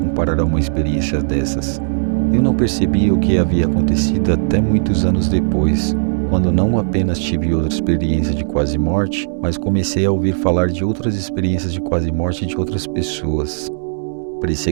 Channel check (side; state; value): left; silent; digital silence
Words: a uma experiência dessas? Eu não percebi o que havia acontecido até muitos anos depois, quando não apenas tive outra experiência de quase morte, mas comecei a ouvir falar de outras experiências de quase morte de outras pessoas. Parecia